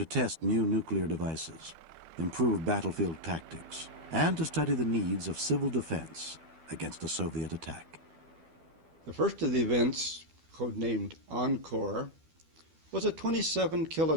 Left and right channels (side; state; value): left; late; 12 ms